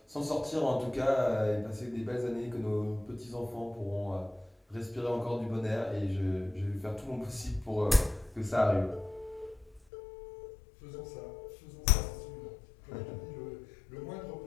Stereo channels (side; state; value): right; drops out; at 9.8 s